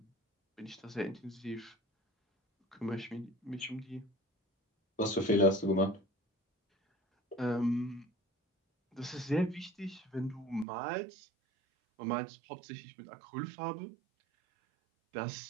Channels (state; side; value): drops out; left; at 10.7 s